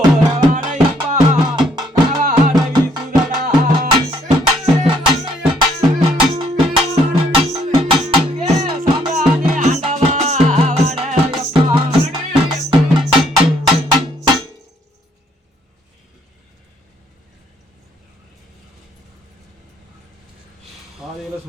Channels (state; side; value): normal; both; correlation 0.67